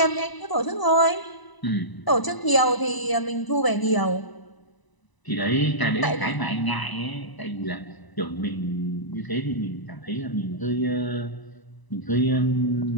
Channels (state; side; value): late; right; 1.0 ms